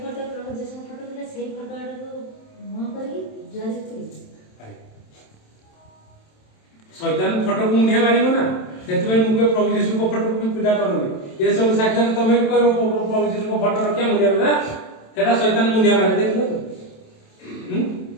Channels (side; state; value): right; late; 27 ms